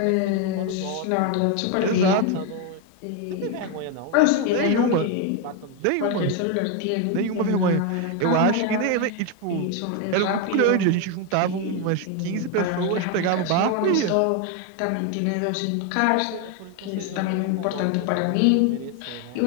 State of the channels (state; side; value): different; both; correlation 0.02